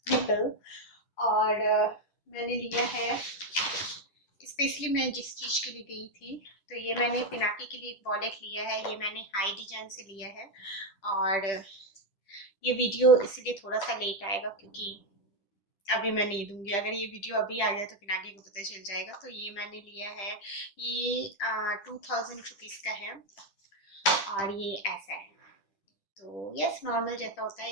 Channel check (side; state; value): right; late; 10 ms